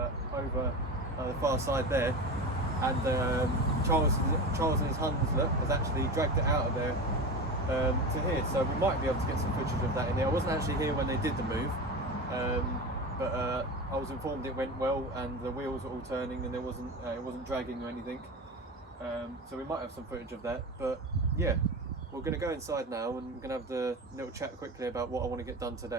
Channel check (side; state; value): both; normal; correlation 0.27